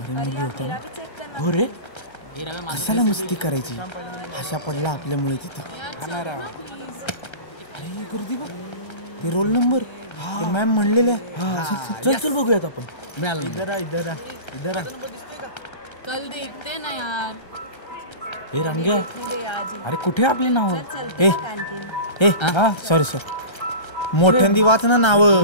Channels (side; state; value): right; late; 1.3 ms